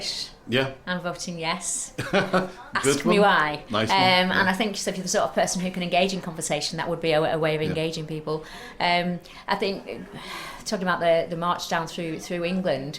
Yeah. I'm voting yes. Ask me why. Nice and I think so if you're the sort of person who can engage in conversation, that would be a way of engaging people. I think, talking about the march down through England,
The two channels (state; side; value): identical; both; correlation 1.00